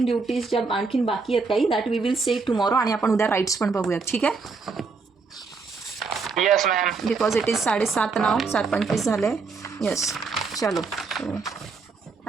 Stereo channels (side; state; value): left; quieter; 4.6 dB